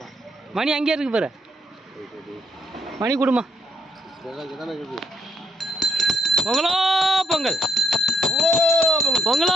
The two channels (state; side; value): normal; both; correlation 0.76